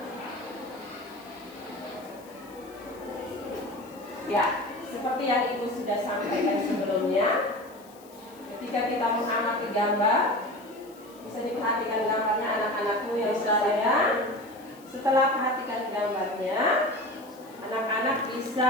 Ya, seperti yang ibu sudah sampaikan sebelumnya, ketika kita mengamati gambar, bisa diperhatikan gambarnya anak-anakku yang sayang. Setelah perhatikan gambarnya, anak-anak bisa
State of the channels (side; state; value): left; noise; hiss, 25 dB below the sound